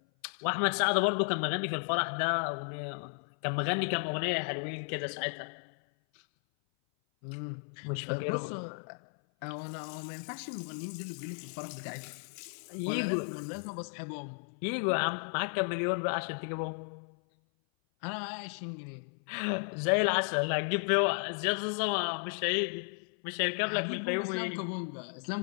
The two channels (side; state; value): right; silent; 55 dB below the other